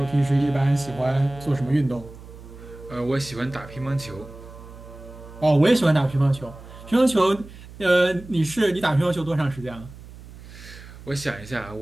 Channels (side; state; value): right; noise; hum, 17 dB below the sound